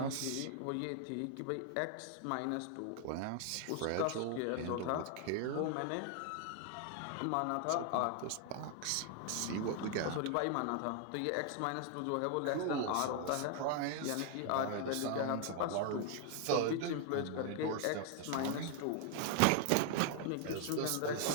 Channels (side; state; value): both; different; correlation 0.00